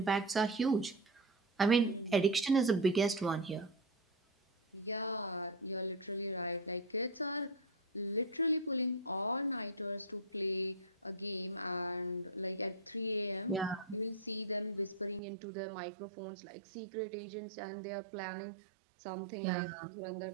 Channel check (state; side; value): drops out; left; at 15.2 s